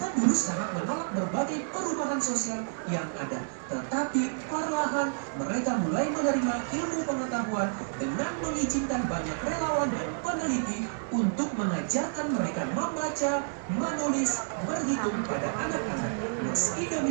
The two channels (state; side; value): silent; left; digital silence